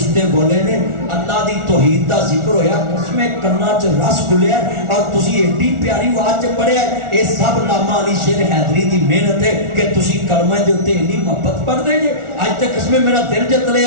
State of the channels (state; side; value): late; left; 1.4 ms